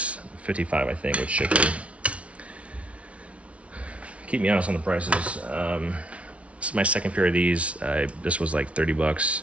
55 I think with shipping. Keep me honest on the prices. This is my second pair of these. This was like 30 bucks.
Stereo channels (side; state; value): left; late; 0.063 ms